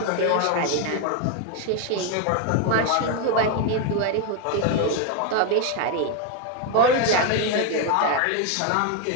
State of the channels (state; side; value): different; both; correlation 0.01